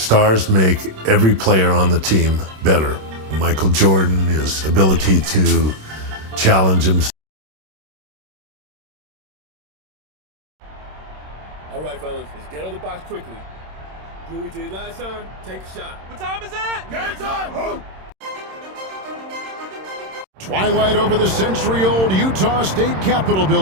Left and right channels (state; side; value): late; left; 26 ms